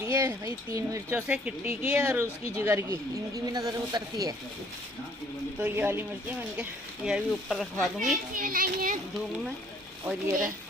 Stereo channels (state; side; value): normal; both; correlation 0.59